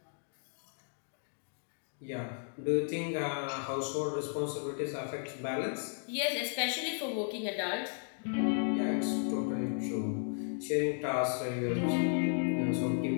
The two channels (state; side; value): silent; right; 55 dB below the other